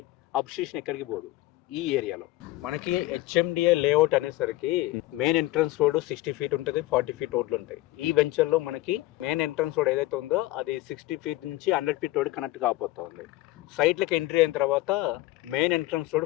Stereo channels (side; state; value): right; quieter; 17.5 dB